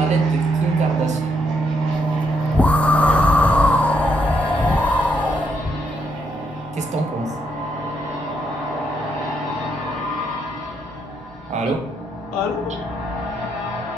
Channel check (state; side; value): normal; both; correlation 0.76